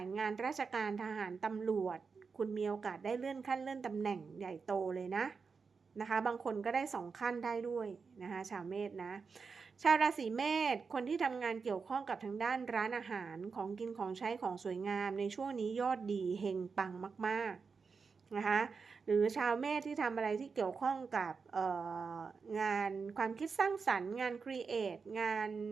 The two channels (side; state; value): left; quieter; 5.2 dB